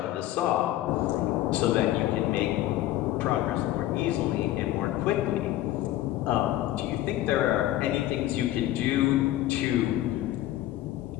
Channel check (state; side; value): quieter; right; 14.6 dB